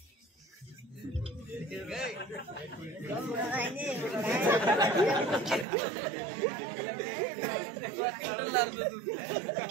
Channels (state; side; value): drops out; left; at 5.7 s